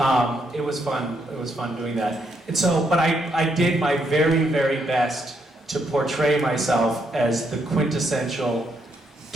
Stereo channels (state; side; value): normal; both; correlation 0.76